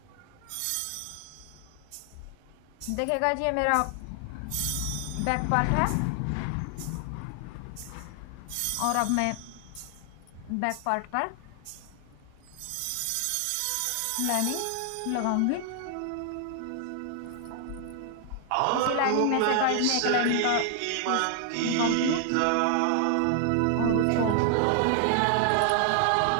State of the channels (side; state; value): both; different; correlation 0.00